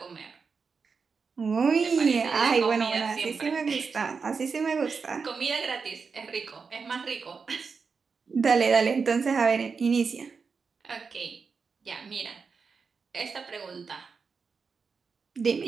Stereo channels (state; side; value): quieter; left; 5.2 dB